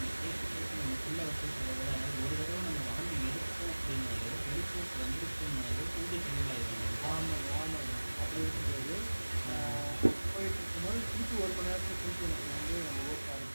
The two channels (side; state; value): both; inverted; correlation -1.00